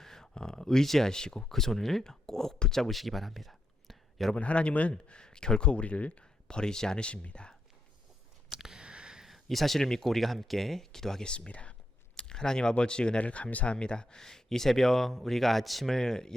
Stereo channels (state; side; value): normal; both; correlation 0.82